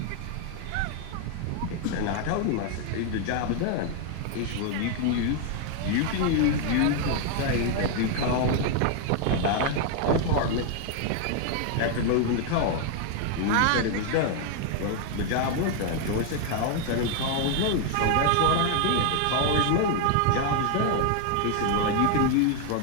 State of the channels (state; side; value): different; both; correlation 0.00